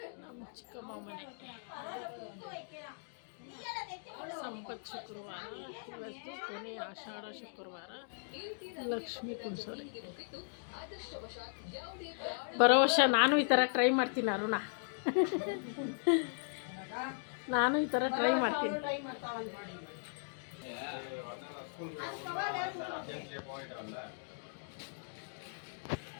ನಮ್ಮ ಚಿಕ್ಕಮ್ಮ ಮನೆ ಸಂಪತ್ ಶುಕ್ರವಾರ, ಇವತ್ತು ಕೊನೆ ಆಷಾಢ ಶುಕ್ರವಾರ. ಲಕ್ಷ್ಮೀ ಕುಂಸೋರೆ. ಬರೋ ವರ್ಷ ನಾನು ಈ ಥರ ಟ್ರೈ ಮಾಡ್ತೀನಿ ಅರುಣ. ನಾನು ಈ ಥರ ಟ್ರೈ ಮಾಡ್ತೀನಿ.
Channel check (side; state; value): right; silent; digital silence